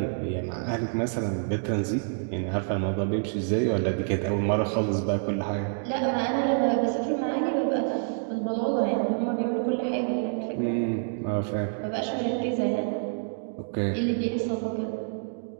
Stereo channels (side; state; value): left; silent; digital silence